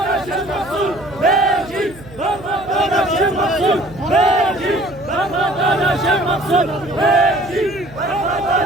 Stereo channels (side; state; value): right; noise; hum, 20 dB below the sound